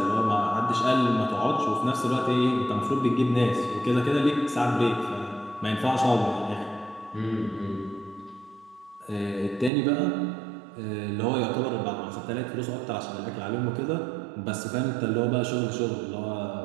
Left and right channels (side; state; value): left; drops out; at 9.7 s